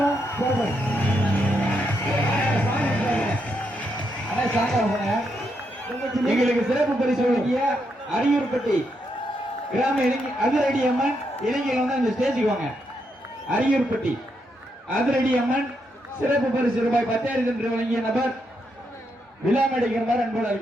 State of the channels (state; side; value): normal; both; correlation 0.80